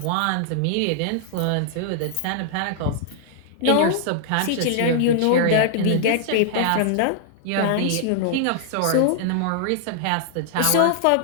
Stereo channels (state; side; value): different; both; correlation -0.01